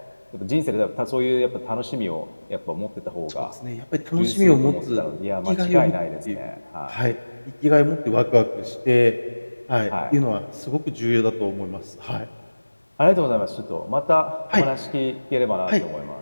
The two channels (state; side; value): inverted; both; correlation -1.00